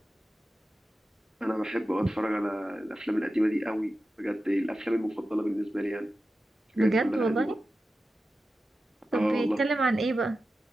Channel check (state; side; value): normal; both; correlation 0.93